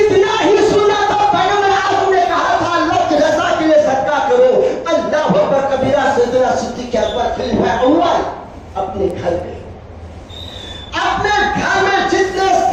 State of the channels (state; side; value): identical; both; correlation 1.00